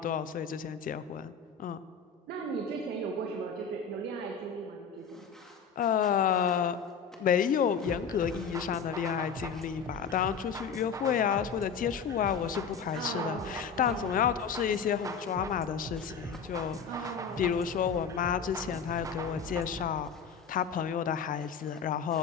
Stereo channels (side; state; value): right; quieter; 6.2 dB